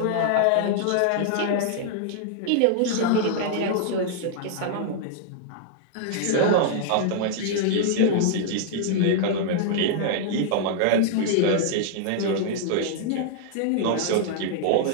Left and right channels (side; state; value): both; different; correlation -0.01